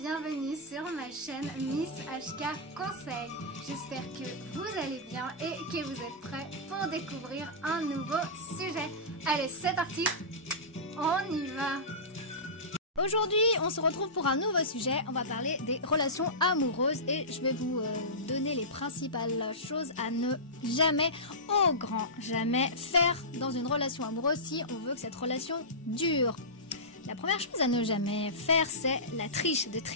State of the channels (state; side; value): normal; both; correlation -0.18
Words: sur ma chaîne Miss HK Conseil. J'espère que vous allez bien et que vous êtes prêts pour découvrir un nouveau sujet. Allez, c'est parti, on y va. Aujourd'hui, on se retrouve pour un nouveau sujet. On va parler des relations amoureuses et je vais vous donner les principales choses à ne jamais, au grand jamais, faire dans une relation amoureuse si on veut que cette relation dure. La première chose à ne jamais faire, c'est la triche, de